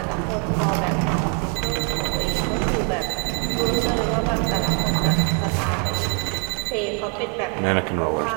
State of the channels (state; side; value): quieter; left; 33.7 dB